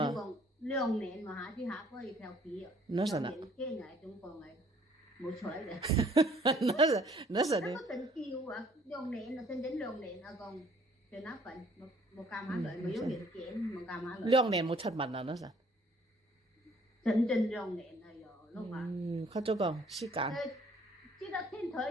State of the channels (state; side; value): normal; both; correlation 0.60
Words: 2年嘛下去下可以调皮哦。2年见来中国来，冇彩嘅。那是的。那個真叫啊，2年啊，整2年啊，講在那份冇干嘛來，冇有年見，冇干嘛來。2年冇出門啦，那是。整2年啦，又碌話。佢做講時間。知道天